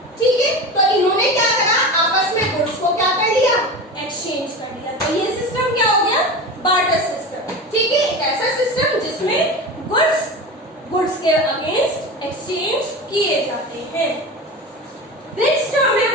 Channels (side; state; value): both; normal; correlation 0.28